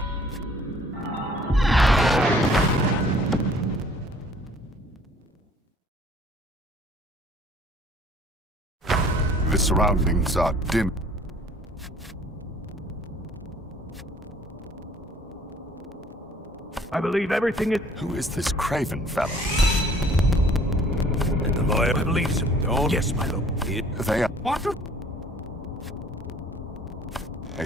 The surroundings are dim. I believe everything is... Who is this Craven fellow? And the lawyer, I believe so. Don't... Yes, my lord. They are What a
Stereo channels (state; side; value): normal; both; correlation 0.55